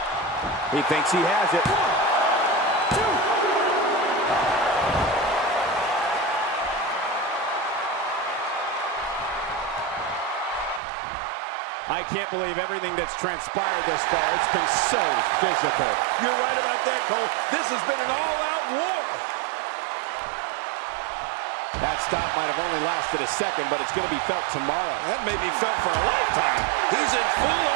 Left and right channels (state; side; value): drops out; left; at 10.8 s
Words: He thinks he has it. I can't believe everything that's transpired thus far. It's been so physical. You're right about that, Cole. This has been an all-out war. That stop might have only lasted a second, but it's going to be felt tomorrow. That may be felt for a lifetime. He's in